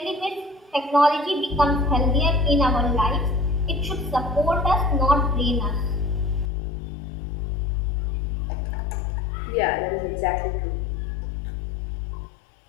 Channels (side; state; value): right; drops out; at 6.5 s